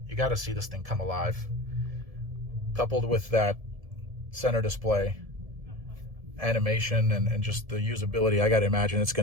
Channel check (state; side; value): late; left; 1.7 ms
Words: You got to see this thing come alive. Coupled with that center display, animation, and just the usability, I got to imagine it's going